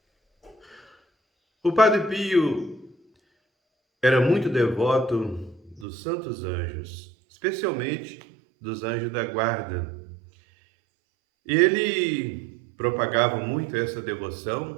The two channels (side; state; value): left; drops out; at 5.9 s